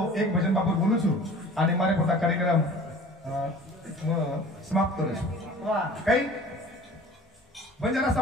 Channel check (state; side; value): normal; both; correlation 0.44